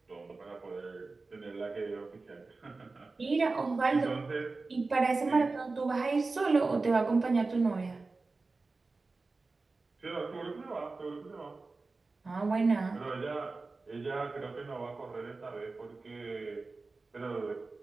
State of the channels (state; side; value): quieter; left; 3.7 dB